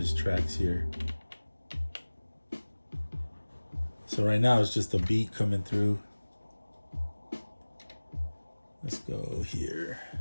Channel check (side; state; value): both; inverted; correlation -1.00